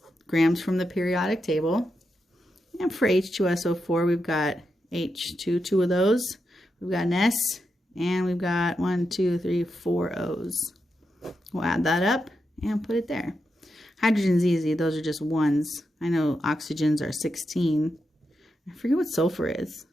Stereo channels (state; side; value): normal; both; correlation 0.86